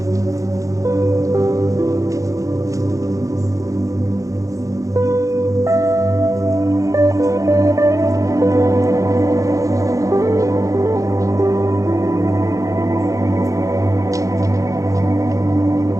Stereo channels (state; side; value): late; left; 0.16 ms